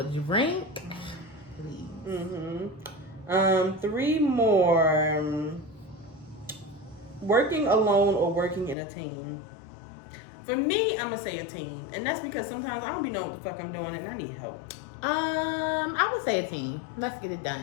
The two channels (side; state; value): right; drops out; at 8.8 s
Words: drink. Please. 3 more. Working alone or working in a team? For me, I'm gonna say a team, and that's because sometimes I don't be knowing what the fuck I'm doing and I need help. I would say a team. Let's get it